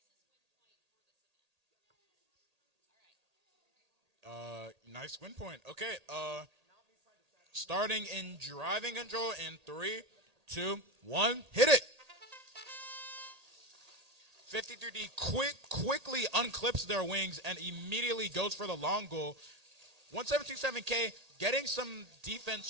Nice win point. Okay, starting in driving control in 3, 2, 1, hit it. 53D quickly unclips their wings and immediately goes for the long goal. 1727K getting some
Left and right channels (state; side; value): late; left; 1.8 ms